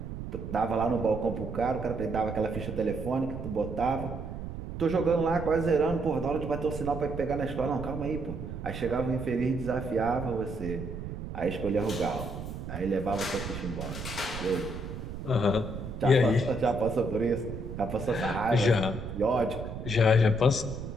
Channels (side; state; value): right; noise; rumble, 8 dB below the sound